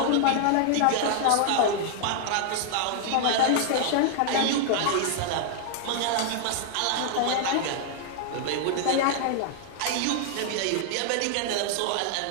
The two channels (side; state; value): both; different; correlation 0.00